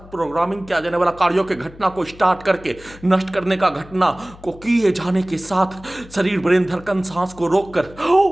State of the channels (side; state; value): left; noise; hum, 20 dB below the sound